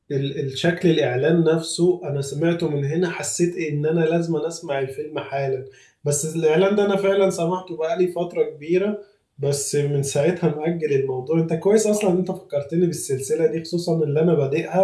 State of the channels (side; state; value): both; identical; correlation 1.00